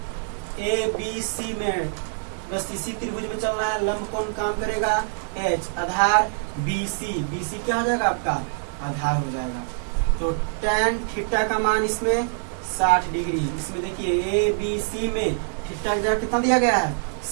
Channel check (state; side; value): silent; left; digital silence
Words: ABC में, बस इसी त्रिभुज में चलना है। लंब कौन काम करेगा? H। आधार BC क्या हो जाएगा आपका? आधार हो जाएगा। तो tan थीटा का मान इसमें 60 डिग्री। इसमें देखिए ABC में थीटा का कितना दिया गया है?